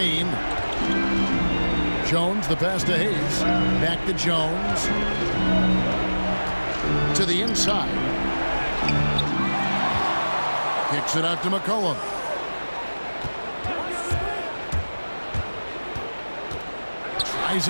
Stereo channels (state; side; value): inverted; both; correlation -1.00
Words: Jones, the pass to Hayes. Back to Jones. To the inside. Kicks it out to McCollum. Tries